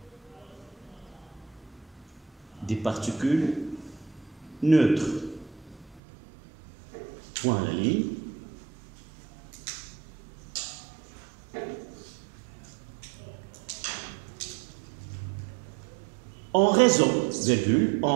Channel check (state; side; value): drops out; left; at 6.0 s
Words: Des particules neutres. Point à la ligne. En raison